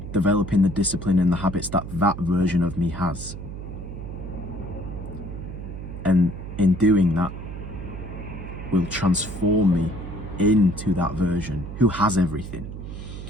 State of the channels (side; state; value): right; noise; hum, 9 dB below the sound